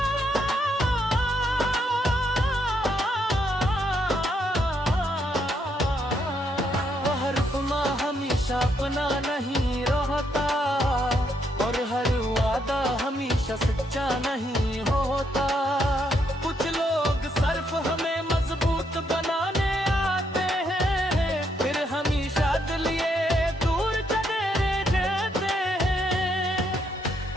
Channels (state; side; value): normal; both; correlation 0.75